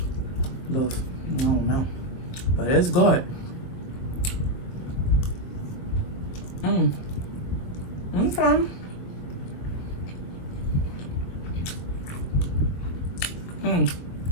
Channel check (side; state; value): right; late; 23 ms